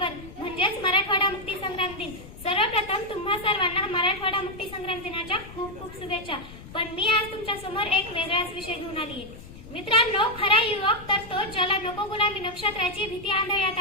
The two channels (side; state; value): left; noise; rumble, 16 dB below the sound